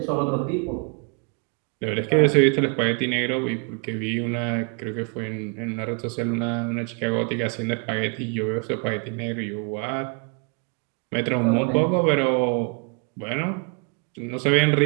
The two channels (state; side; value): quieter; left; 36.1 dB